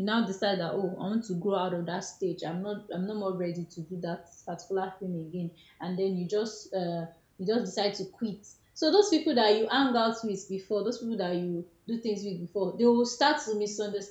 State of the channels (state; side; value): identical; both; correlation 1.00